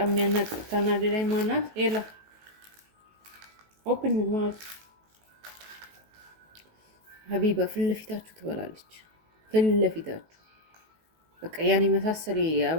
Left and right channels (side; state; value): left; late; 19 ms